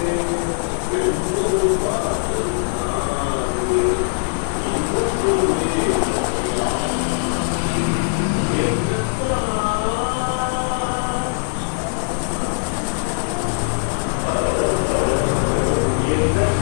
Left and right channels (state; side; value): silent; right; digital silence